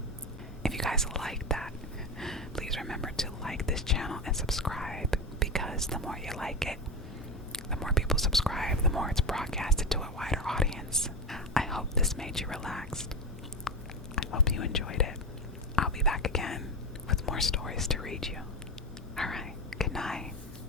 if you guys like that, please remember to like this channel and subscribe, because the more you like it, the more people subscribe, the more it's broadcasted to a wider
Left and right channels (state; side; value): normal; both; correlation 0.19